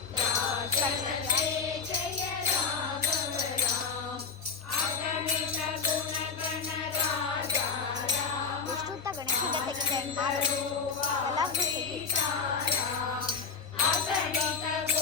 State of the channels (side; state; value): right; quieter; 5.4 dB